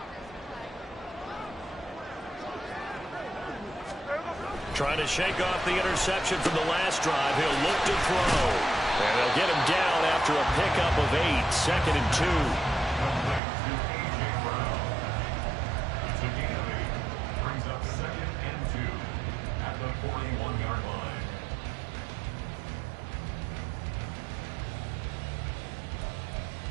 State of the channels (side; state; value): left; drops out; at 13.4 s